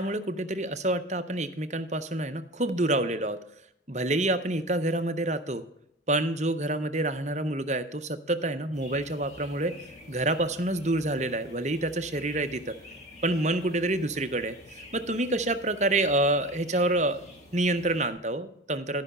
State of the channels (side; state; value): both; normal; correlation 0.35